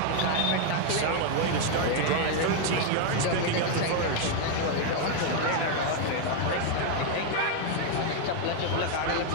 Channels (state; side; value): different; both; correlation 0.00